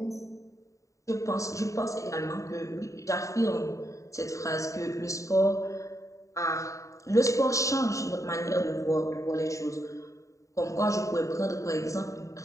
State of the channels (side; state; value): right; late; 0.16 ms